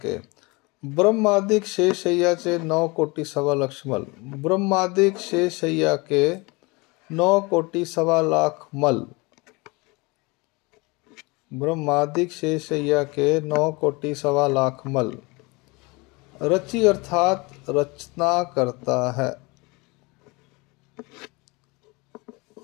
ब्रह्मादिक शेषय्याचे 9 कोटि सवा लक्ष मल, ब्रह्मादिक शेषय्या के 9 कोटि सवा लाख मल, ब्रह्मादिक शेषय्या के 9 कोटि सवा लाख मल। रचि अर्थात रचना करता है,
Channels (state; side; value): quieter; right; 26.1 dB